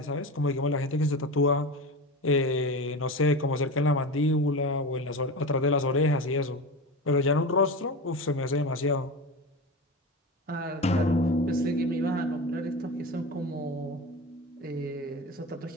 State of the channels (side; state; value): both; normal; correlation 0.26